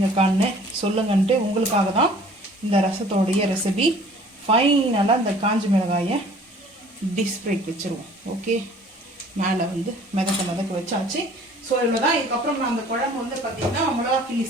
சொல்லுங்கன்ட்டு உங்களுக்காக தான் இந்த ரசத்தோடைய ரெசிபி. ஃபைனலாக இந்த காஞ்ச மிளகாயை டிஸ்பிளேக்கு வச்சுருவோம். ஓகே, மேலே வந்து மிதக்க வச்சாச்சு. ஸோ இவ்வளோ தான். இதுக்கப்புறம் நான் அந்த குழம்பு வந்து பார்த்திங்கன்னா மிளகா கிள்ளி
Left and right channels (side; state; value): both; normal; correlation 0.51